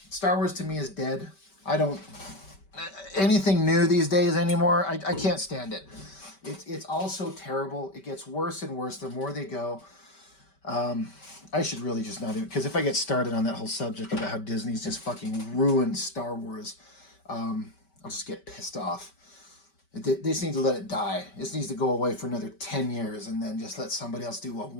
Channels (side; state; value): right; late; 5.2 ms